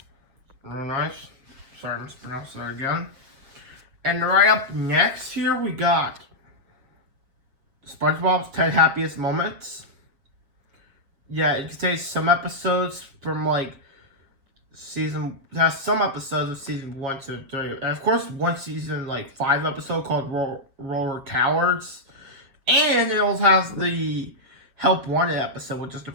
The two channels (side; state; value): left; late; 7.2 ms